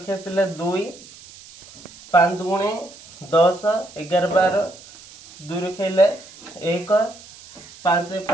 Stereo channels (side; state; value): right; noise; hiss, 20 dB below the sound